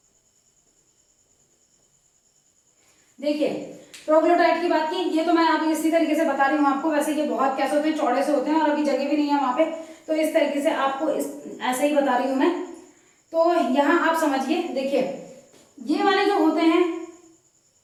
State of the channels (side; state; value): both; identical; correlation 1.00